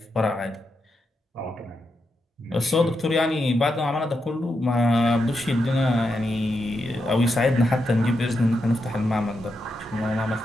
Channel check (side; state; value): both; normal; correlation 0.85